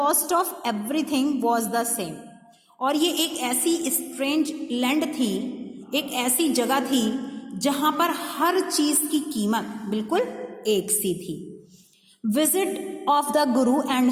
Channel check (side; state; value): both; identical; correlation 1.00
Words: of everything was the same. और ये एक ऐसी स्ट्रेंज लैंड थी, एक ऐसी जगह थी जहां पर हर चीज की कीमत बिल्कुल एक सी थी। Visit of the guru and